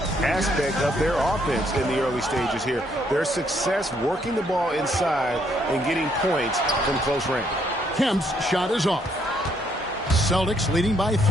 aspect of their offense in the early stages here. Their success working the ball inside and getting points from close range. Kemp's shot is off. Celtics leading by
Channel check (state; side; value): normal; both; correlation 0.70